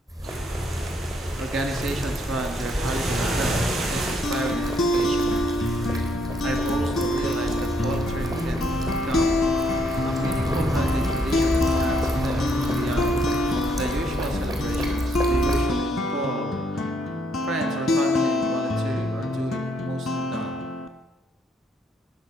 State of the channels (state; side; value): normal; both; correlation 0.71